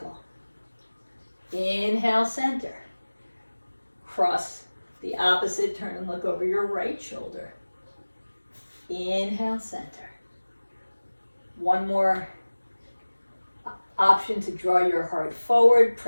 Inhale, center. Cross the opposite, turn and look over your right shoulder. Inhale, center. One more option to draw your heart forward,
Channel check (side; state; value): both; inverted; correlation -1.00